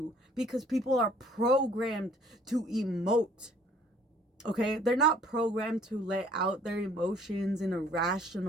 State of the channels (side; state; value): both; normal; correlation 0.57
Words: because people are programmed to emote. Okay? They're not programmed to let out their emotions in a